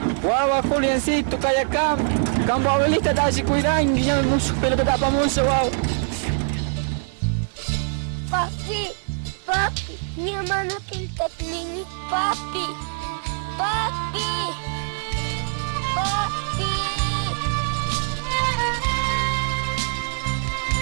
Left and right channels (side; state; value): left; silent; 61 dB below the other